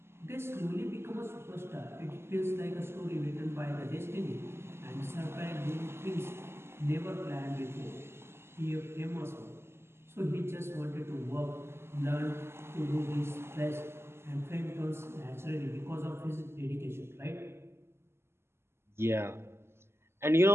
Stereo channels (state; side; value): late; left; 0.12 ms